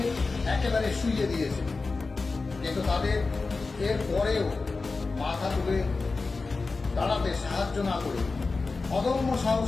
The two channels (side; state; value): right; quieter; 3.9 dB